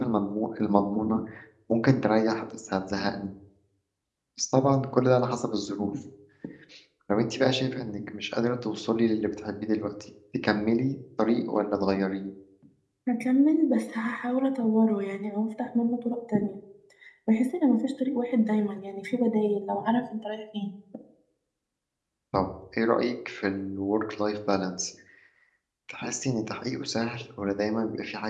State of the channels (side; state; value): both; identical; correlation 1.00